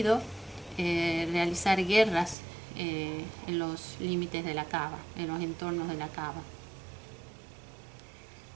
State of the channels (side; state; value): left; drops out; at 2.4 s